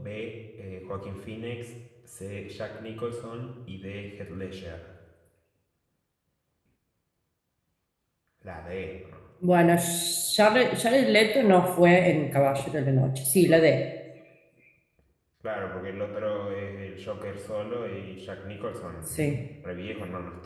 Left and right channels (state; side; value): identical; both; correlation 1.00